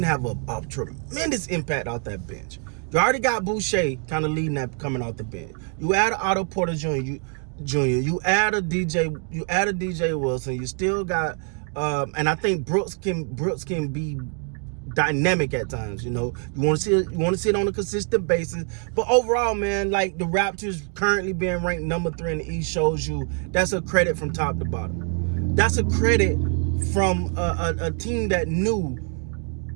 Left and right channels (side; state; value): left; quieter; 39.3 dB